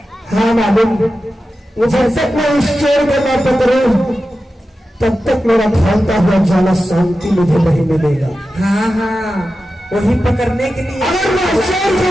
हाँ मालूम, जब तक मैं इस चोर को न पकड़ूं तब तक मेरा भागता हुआ जाला शांति मुझे नहीं मिलेगा। हाँ हाँ, वही पकड़ने के लिए। अगर मैं इस चोर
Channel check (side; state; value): both; normal; correlation 0.92